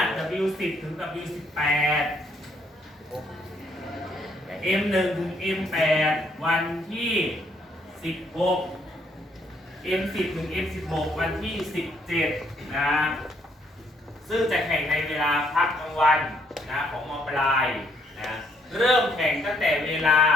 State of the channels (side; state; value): both; normal; correlation 0.69